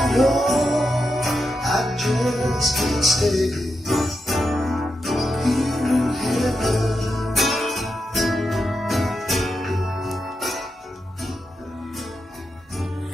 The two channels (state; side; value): normal; both; correlation 0.86